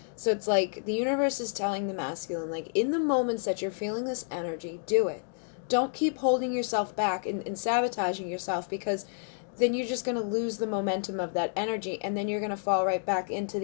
So it's like the universe is telling the masculine, like, in the moments that you're feeling this energy, do it. Don't keep holding yourself back and sabotaging yourself, because then you're just going to lose the momentum of that energy, and then you're going to fall right back into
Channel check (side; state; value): right; silent; digital silence